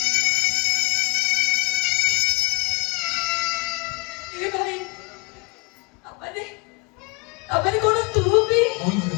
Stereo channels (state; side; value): quieter; right; 27.7 dB